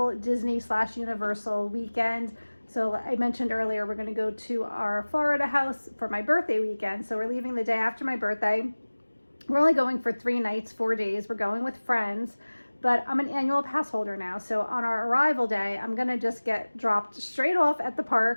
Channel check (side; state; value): both; inverted; correlation -1.00